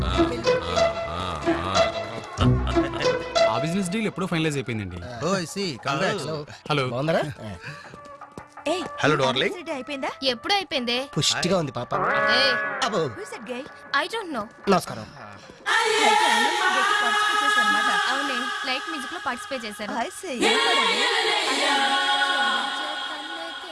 ఆ బిజినెస్ డీల్ ఎప్పుడో ఫైనలైజ్ అయిపోయిందండి. హలో బాగుందరా? Hello darling. అయిపోయిందా? ఎప్పుడు అయిపోయిందే? పుష్టిగా ఉంది పాప. I don't know. నమస్కారం. అవునే, లైట్ మ్యూజిక్ లో పార్టిసిపేట్ చేశాను.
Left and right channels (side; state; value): both; identical; correlation 1.00